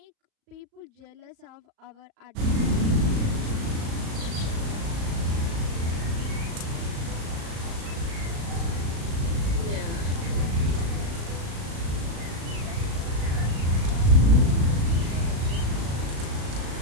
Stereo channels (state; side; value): late; left; 36 ms